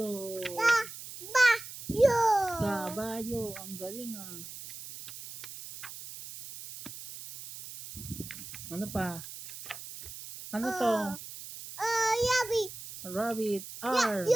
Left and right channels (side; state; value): right; noise; hiss, 12 dB below the sound